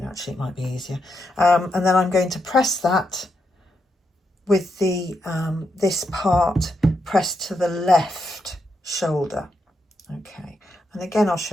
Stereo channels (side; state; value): both; normal; correlation 0.82